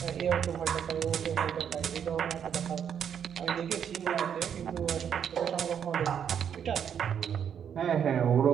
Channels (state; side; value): quieter; left; 8.3 dB